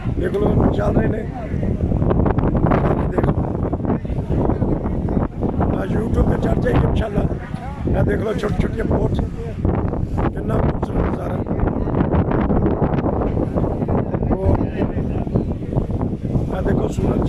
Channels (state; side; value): identical; both; correlation 1.00